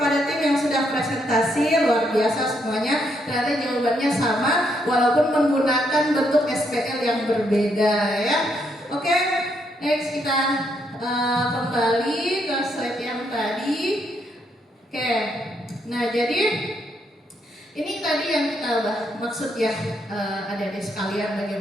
tim yang sudah presentasi, luar biasa semuanya. Ternyata jawabannya sama walaupun menggunakan bentuk SPL yang berbeda ya. Oke, next kita kembali ke slide yang tadi. Oke, nah jadi ini tadi yang kita maksud ya adik-adik sekalian,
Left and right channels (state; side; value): normal; both; correlation 0.75